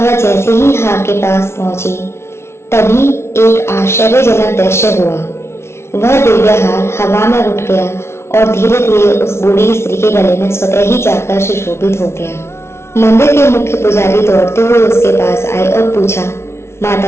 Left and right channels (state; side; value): late; right; 0.13 ms